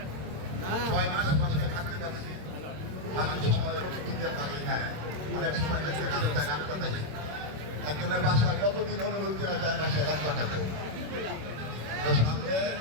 6 মাস বাসায় থাকতে পারছি। অনেক সময় দিতে পারি না, অনেক সময় একজনের বাসায় কতদিন অনুভূতি করা যায় বাসায় রাত কাটাবো। তো সামনে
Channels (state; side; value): late; left; 26 ms